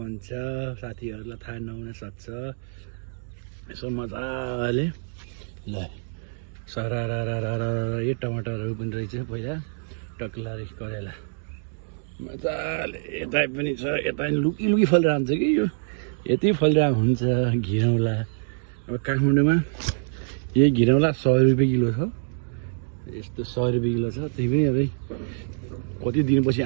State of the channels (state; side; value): silent; left; digital silence